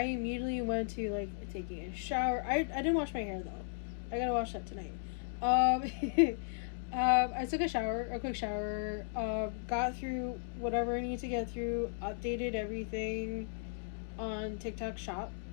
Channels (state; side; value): silent; right; digital silence